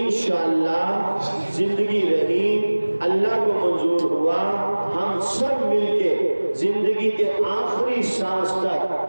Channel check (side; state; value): both; inverted; correlation -1.00